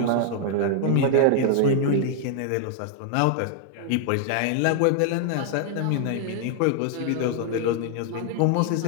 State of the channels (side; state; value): both; different; correlation 0.00